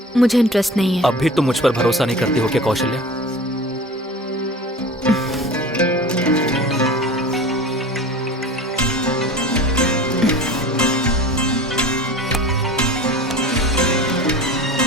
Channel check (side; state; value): both; normal; correlation 0.38